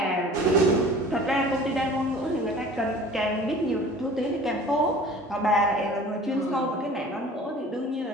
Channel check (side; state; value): both; normal; correlation 0.45